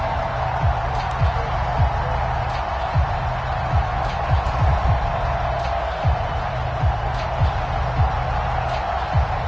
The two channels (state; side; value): identical; both; correlation 1.00